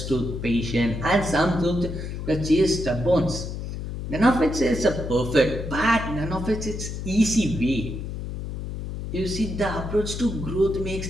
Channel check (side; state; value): left; noise; hum, 6 dB below the sound